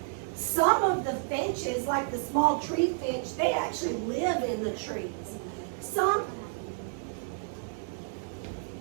Some of the finches, like the small tree finch, they actually live in the trees. Some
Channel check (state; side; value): silent; left; digital silence